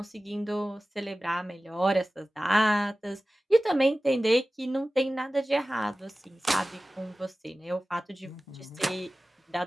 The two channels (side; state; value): both; normal; correlation 0.96